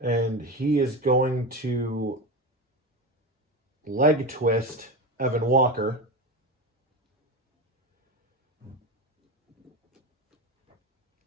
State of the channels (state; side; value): normal; both; correlation 0.21